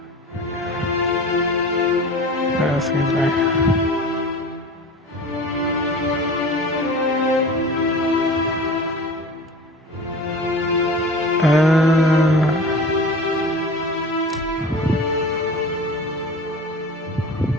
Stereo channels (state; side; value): normal; both; correlation 0.38